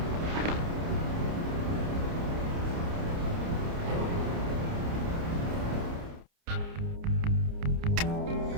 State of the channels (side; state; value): left; late; 29 ms